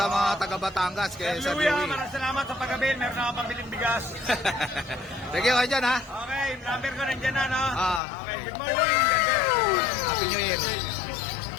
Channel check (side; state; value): right; drops out; at 8.0 s